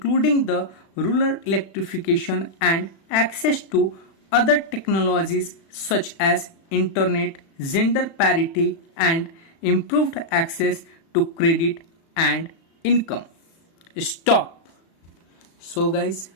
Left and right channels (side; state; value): right; late; 36 ms